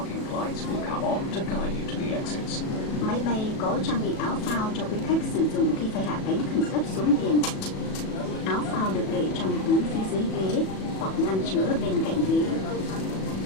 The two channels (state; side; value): late; right; 37 ms